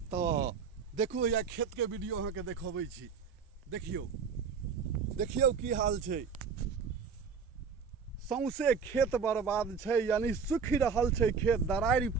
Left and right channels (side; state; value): left; quieter; 5.9 dB